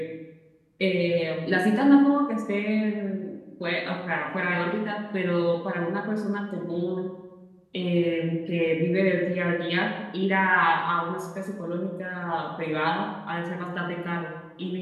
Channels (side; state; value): both; identical; correlation 1.00